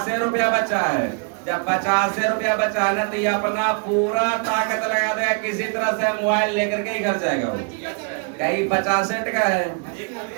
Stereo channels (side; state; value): left; quieter; 39.8 dB